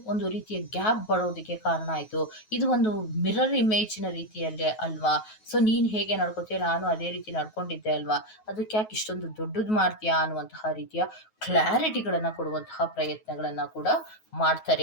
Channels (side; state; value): right; late; 9.3 ms